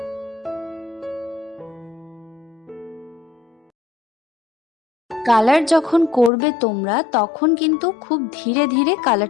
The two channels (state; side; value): drops out; right; at 6.3 s